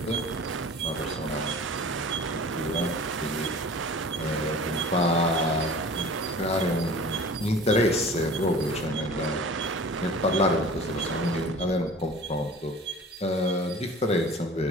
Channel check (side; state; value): both; normal; correlation 0.42